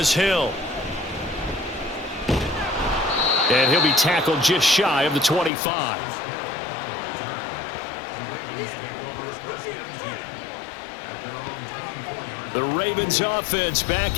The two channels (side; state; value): right; drops out; at 5.5 s